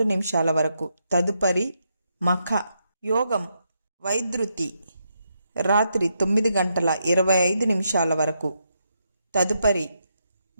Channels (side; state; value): both; inverted; correlation -0.80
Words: వరకు. తదుపరి మఖ. యోగం వైద్యుతి. రాత్రి 9:25 వరకు. తదుపరి